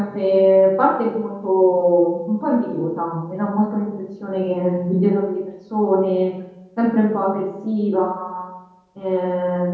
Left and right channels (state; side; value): identical; both; correlation 1.00